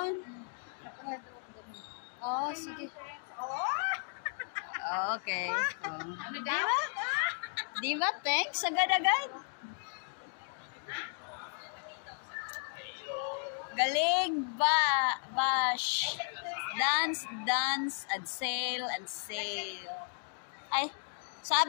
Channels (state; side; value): silent; right; 55 dB below the other